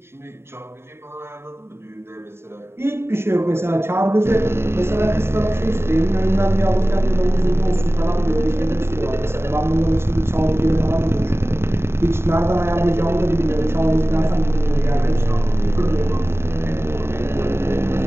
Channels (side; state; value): left; late; 0.12 ms